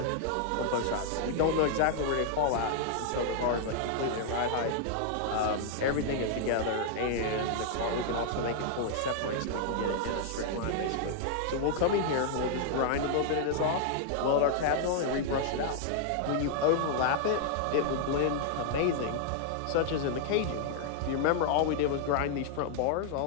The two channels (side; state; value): both; different; correlation -0.01